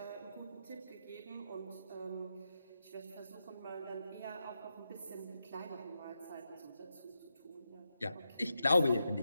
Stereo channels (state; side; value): inverted; both; correlation -0.86